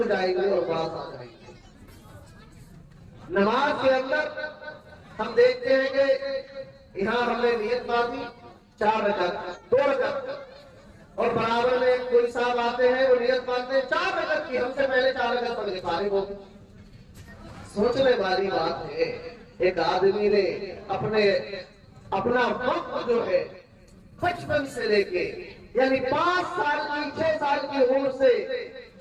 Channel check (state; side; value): identical; both; correlation 1.00